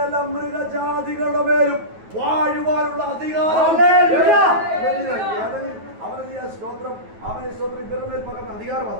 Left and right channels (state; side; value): late; left; 9.3 ms